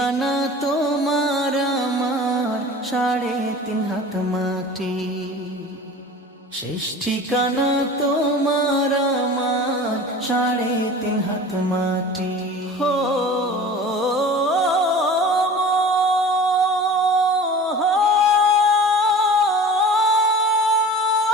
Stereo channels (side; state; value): both; normal; correlation 0.39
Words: তোমার আমার 3.5 হাত মাটি। শেষ ঠিকানা তোমার আমার 3.5 হাত মাটি। হো